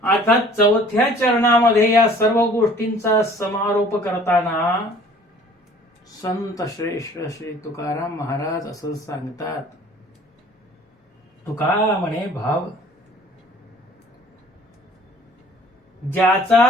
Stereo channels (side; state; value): both; normal; correlation 0.52